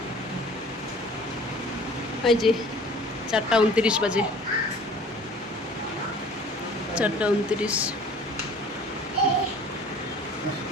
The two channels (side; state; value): both; normal; correlation 0.49